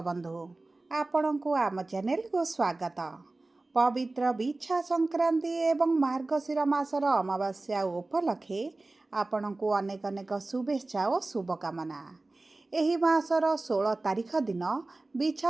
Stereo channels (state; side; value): quieter; left; 3.1 dB